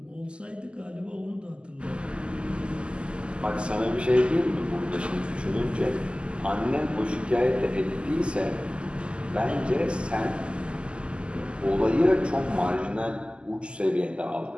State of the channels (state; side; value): late; left; 0.051 ms